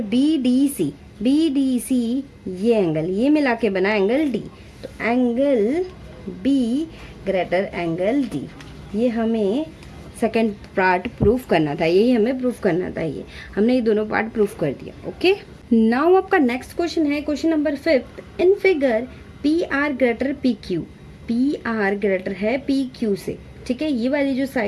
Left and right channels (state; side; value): identical; both; correlation 1.00